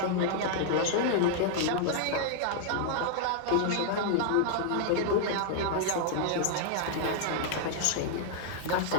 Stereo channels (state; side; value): different; both; correlation -0.01